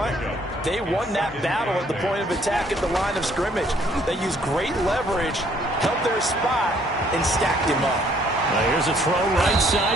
they won that battle at the point of attack at the line of scrimmage. They used great leverage, held their spot, and stacked him up. Now here's a throw right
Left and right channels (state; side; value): normal; both; correlation 0.63